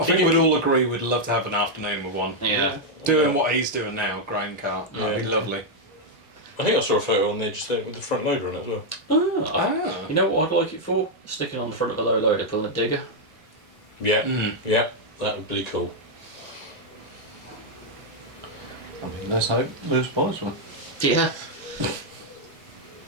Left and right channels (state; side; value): normal; both; correlation -0.01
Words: think we'd all agree we'd love to have an afternoon with one. Yeah. Doing what he's doing now, grain car. That'd be Yeah. lovely. I think I saw a photo on there just there with the front loader on it as well. Ah, you know what I'd like it for? Sticking on the front of a low loader, pulling a digger. Yeah, yeah, that would be cool. I mean, let's hope Lewis buys one. Yeah.